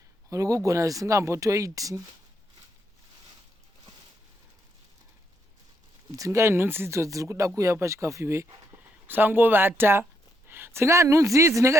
uri kugona zvisingambotoiti dzingai nhunzi idzo dziri kuda kuuya pachikafu iwe usangovata dzingai nhunzi idzi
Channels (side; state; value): both; normal; correlation 0.77